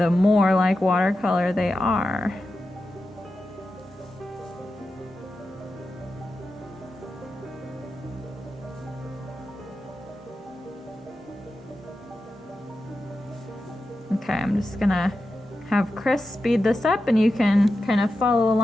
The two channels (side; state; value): both; normal; correlation 0.90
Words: more like watercolor they are. Okay, I'm just gonna have Chris speed this up and you can kind of follow